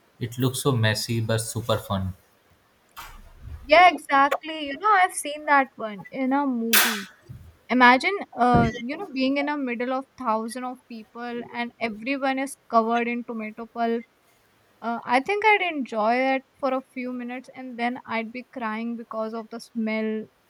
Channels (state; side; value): identical; both; correlation 1.00